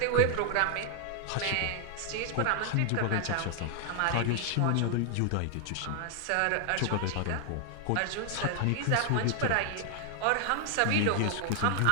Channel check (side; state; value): both; different; correlation 0.00